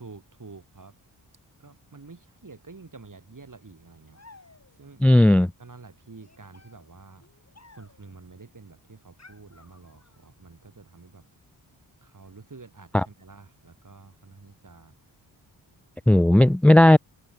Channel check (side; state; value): both; normal; correlation 0.98